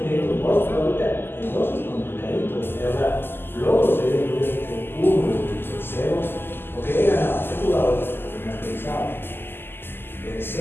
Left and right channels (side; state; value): right; late; 0.10 ms